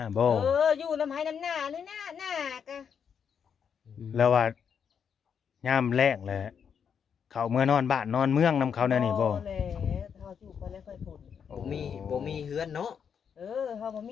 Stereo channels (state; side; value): quieter; right; 7.3 dB